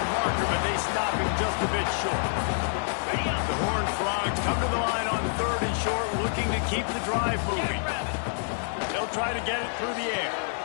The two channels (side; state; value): right; silent; digital silence